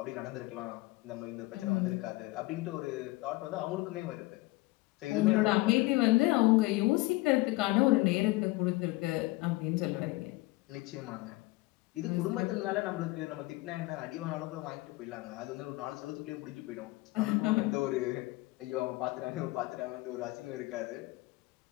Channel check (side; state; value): right; quieter; 21.2 dB